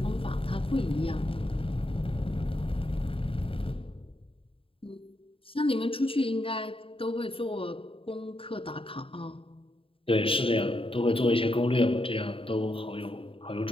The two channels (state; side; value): late; right; 0.26 ms